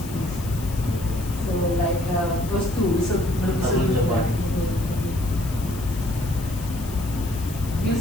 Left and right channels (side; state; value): left; noise; hiss, 15 dB below the sound